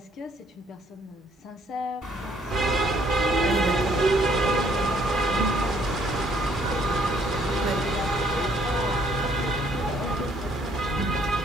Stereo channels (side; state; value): both; normal; correlation 0.65